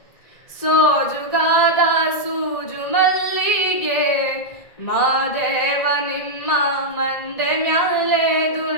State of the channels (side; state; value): right; late; 1.8 ms